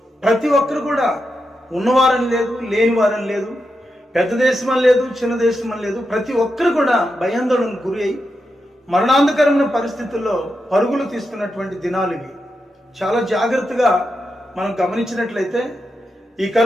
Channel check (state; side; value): normal; both; correlation 0.87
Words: ప్రతి ఒక్కరు కూడా ఉన్నవారని లేదు, లేని వారని లేదు, పెద్ద దేశం అని లేదు, చిన్న దేశం అని లేదు, ప్రతి ఒక్కరు కూడా భయాందోళనకు గురి అయి మరణాంతకరమైన పరిస్థితుల్లో పరుగులు తీసుకున్నటువంటి దినాలు ఇవి. చాలా జాగ్రత్తగా మనం గమనించినట్లయితే ఈ